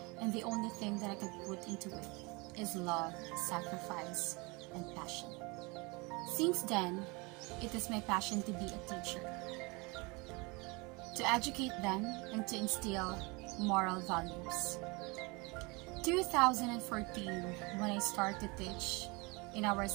and the only thing that I could put into it is love, sacrifice, and passion. Since then, it is my passion to be a teacher, to educate them and to instill moral values. 2014, when I started to teach in our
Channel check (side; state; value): left; quieter; 27.2 dB